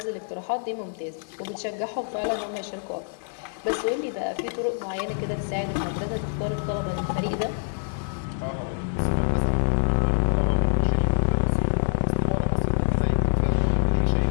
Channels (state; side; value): silent; right; 61 dB below the other